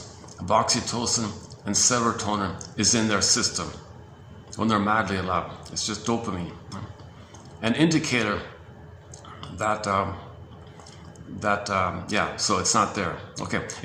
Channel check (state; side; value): identical; both; correlation 1.00